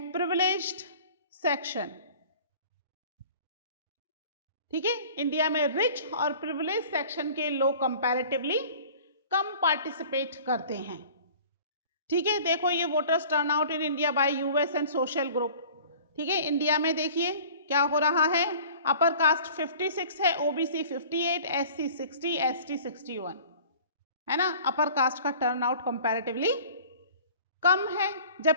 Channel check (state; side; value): inverted; both; correlation -0.46